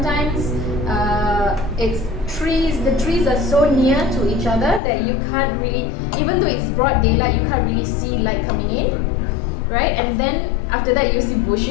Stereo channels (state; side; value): drops out; right; at 4.8 s